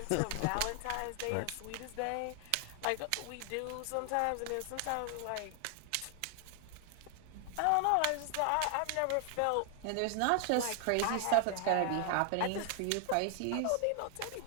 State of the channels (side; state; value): both; different; correlation 0.00